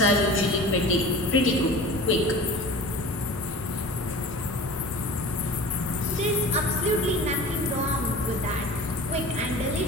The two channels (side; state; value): both; normal; correlation 0.38